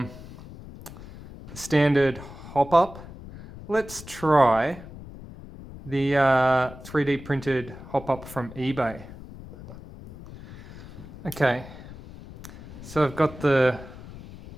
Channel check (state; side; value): noise; left; rumble, 15 dB below the sound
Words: the standard hopup. Let's try the 3D printed hopup from eBay. Okay, so I've got the